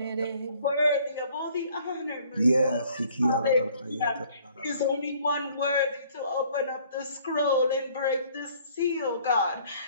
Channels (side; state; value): both; inverted; correlation -0.58